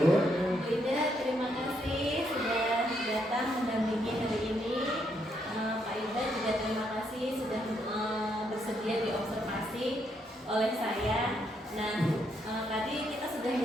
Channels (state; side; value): normal; both; correlation 0.75